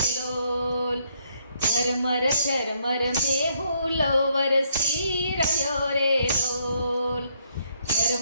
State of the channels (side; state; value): both; inverted; correlation -0.71